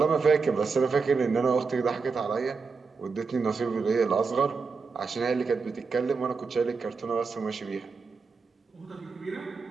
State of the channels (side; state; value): left; quieter; 4.8 dB